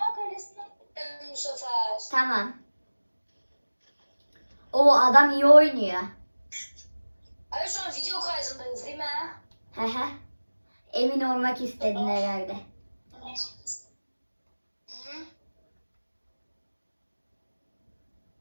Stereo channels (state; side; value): inverted; both; correlation -1.00